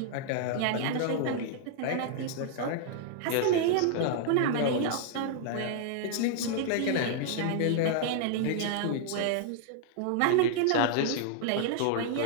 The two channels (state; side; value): different; both; correlation -0.01